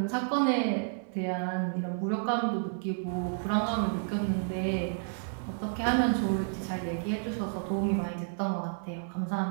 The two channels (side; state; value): left; silent; digital silence